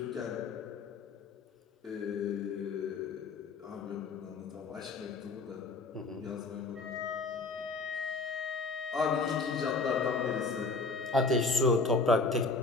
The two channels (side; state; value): right; quieter; 4.0 dB